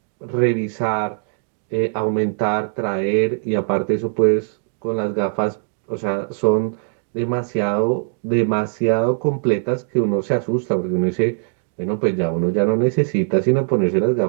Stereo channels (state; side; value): silent; left; digital silence